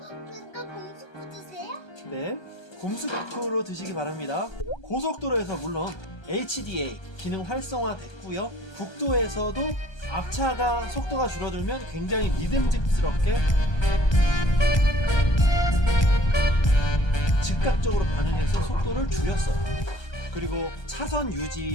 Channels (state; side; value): late; right; 1.3 ms